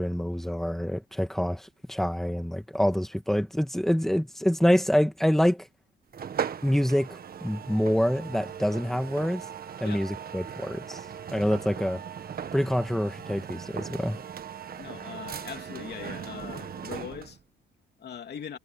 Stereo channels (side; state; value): both; normal; correlation 0.94